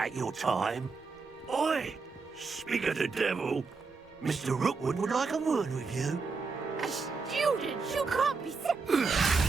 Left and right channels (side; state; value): left; quieter; 4.5 dB